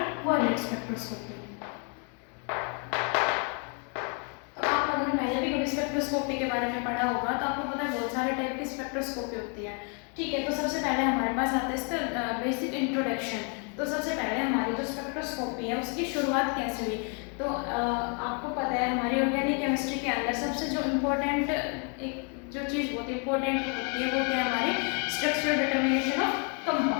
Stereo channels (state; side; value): quieter; right; 37.8 dB